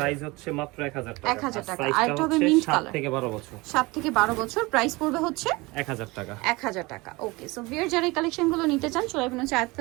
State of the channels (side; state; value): left; quieter; 23.3 dB